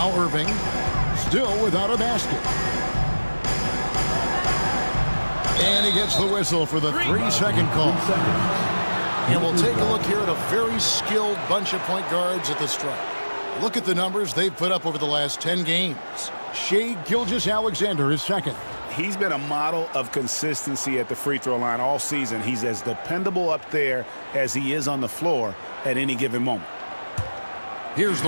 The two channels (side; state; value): both; inverted; correlation -1.00